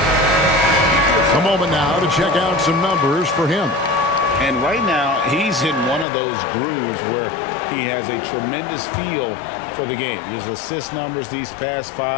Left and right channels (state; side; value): drops out; right; at 6.1 s